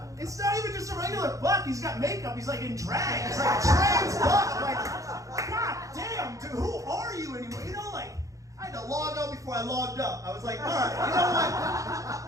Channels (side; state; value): left; late; 0.16 ms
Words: it's not even just a regular buck. He's got makeup. He's like in drag. He's like a trans buck. Like, god damn, dude, who are you anymore? You know, like, I had to log out before I logged up. I was like, all right,